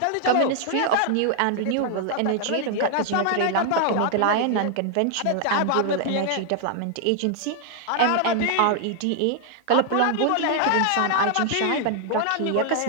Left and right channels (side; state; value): both; different; correlation 0.00